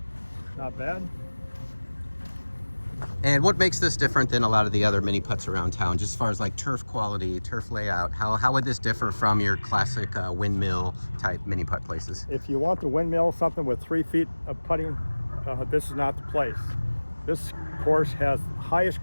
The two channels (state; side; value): inverted; both; correlation -1.00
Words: not bad. And what makes this different than a lot of the other mini putts around town, just as far as like turf quality, turf layout? How would this differ from your classic windmill type mini putt places? If you want the windmill, something with 3 feet of putting, this is not the place. This course has highest